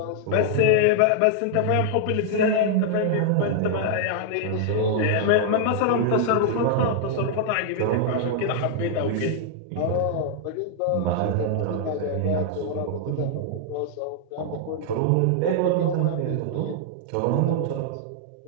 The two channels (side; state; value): both; different; correlation -0.01